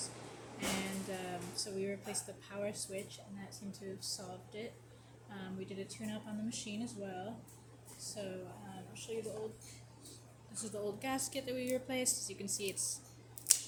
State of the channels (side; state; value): both; identical; correlation 1.00